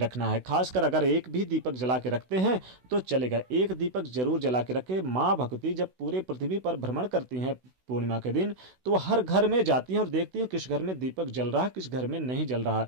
है। खासकर अगर एक भी दीपक जला के रखते हैं तो चलेगा, एक दीपक जरूर जला के रखें। माँ भगवती जब पूरे पृथ्वी पर भ्रमण करती हैं पूर्णिमा के दिन, तो वो हर घर में जाती हैं और देखती हैं किस घर में दीपक जल रहा है, किस घर में नहीं जल रहा।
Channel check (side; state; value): left; late; 16 ms